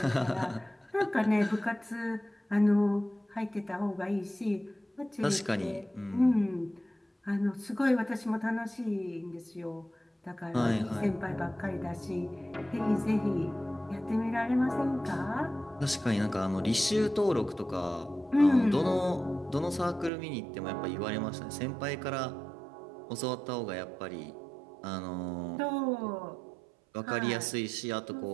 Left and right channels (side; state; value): left; drops out; at 20.1 s